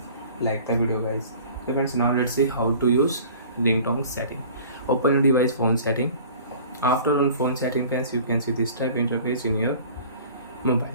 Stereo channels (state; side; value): inverted; both; correlation -0.46